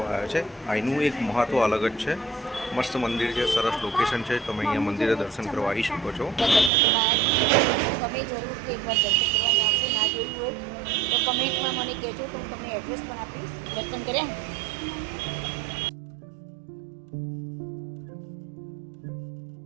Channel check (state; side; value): drops out; left; at 6.7 s